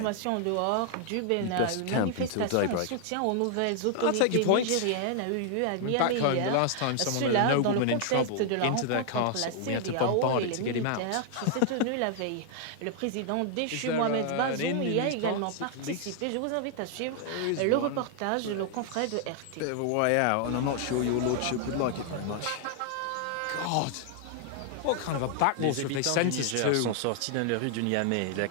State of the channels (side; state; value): both; different; correlation 0.00